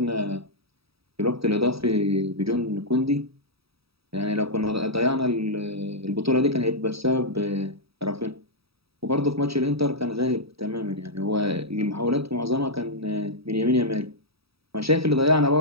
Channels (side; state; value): left; late; 0.77 ms